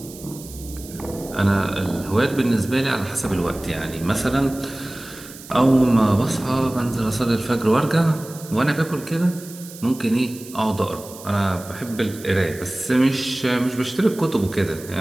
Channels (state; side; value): noise; right; hiss, 17 dB below the sound